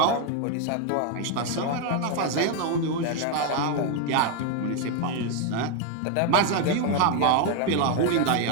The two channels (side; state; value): both; different; correlation 0.01